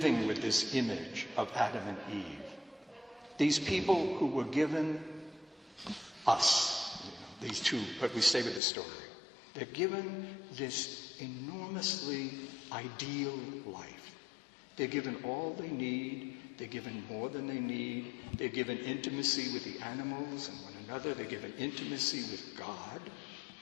with this image of Adam and Eve. These people who were given us, these two, but we stay with the story. They're given this enormously ideal life. They're given all they need. They're given more than they need. They're given intimacy with the animals and one another. They're given intimacy with God.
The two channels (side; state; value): right; drops out; at 8.6 s